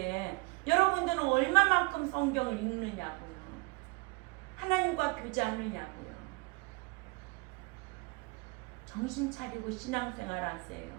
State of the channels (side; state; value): left; quieter; 27.0 dB